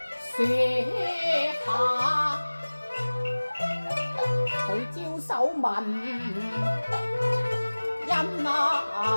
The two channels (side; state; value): both; inverted; correlation -1.00